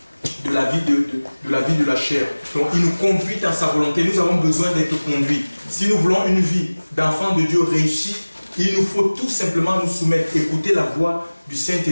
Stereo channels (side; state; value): both; inverted; correlation -1.00